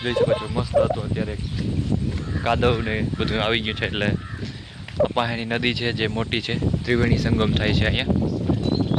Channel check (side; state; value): both; identical; correlation 1.00